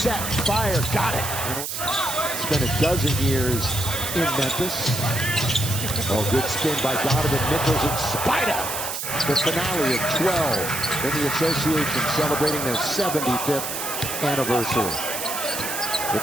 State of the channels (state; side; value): noise; right; hiss, 4 dB below the sound